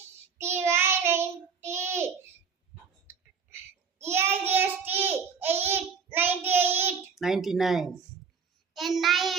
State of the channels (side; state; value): left; quieter; 6.0 dB